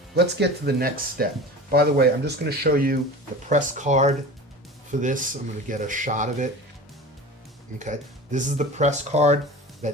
let's get to the next step. By the way, I'm just going to show you the press card for this. I'm going to get a shot of it. Okay, this is the press card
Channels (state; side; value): normal; both; correlation 0.35